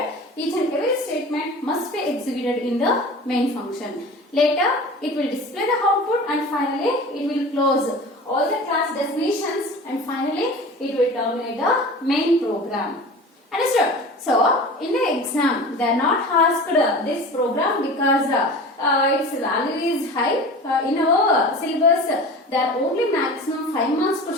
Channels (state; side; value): normal; both; correlation 0.36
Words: each and every statement must be executed in the main function. Later, it will display the output and finally, it will close all the class definitions and finally, it will terminate the main program. Understood? So, in the exam, they are not asked this program because its value is high. In our syllabus, there are only maximum 5 marks